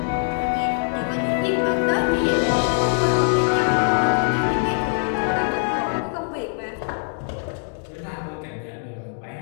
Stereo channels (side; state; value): right; silent; digital silence